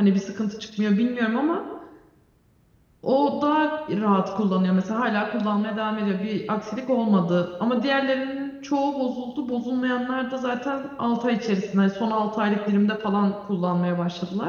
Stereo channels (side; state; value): both; identical; correlation 1.00